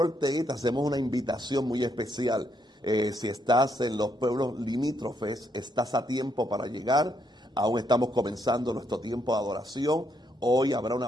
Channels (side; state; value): both; normal; correlation 0.75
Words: Ortega, te hacemos una invitación muy especial. Si estás en los pueblos limítrofes, estás a tiempo para llegar. Aún estamos comenzando nuestro tiempo de adoración. Hoy habrá